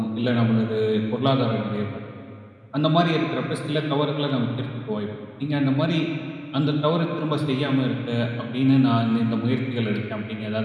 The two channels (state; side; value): identical; both; correlation 1.00